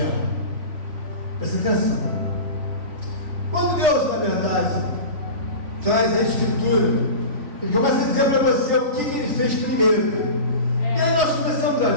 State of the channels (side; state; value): left; late; 3.5 ms